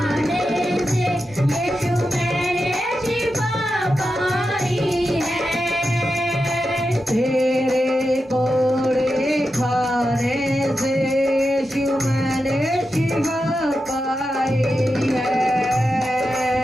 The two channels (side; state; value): both; normal; correlation 0.89